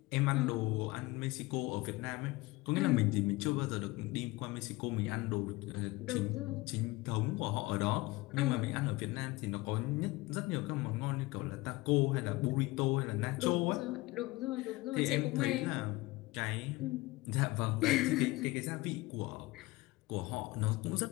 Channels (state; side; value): quieter; right; 21.2 dB